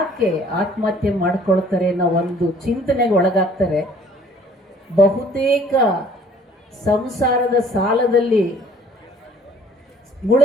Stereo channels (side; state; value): both; normal; correlation 0.55